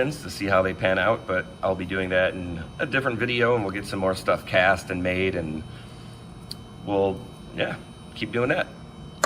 to see how they pan out, but I'll be doing that in a different video and we'll get some more stuff cast and made and we'll, yeah, keep doing that.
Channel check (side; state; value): both; identical; correlation 1.00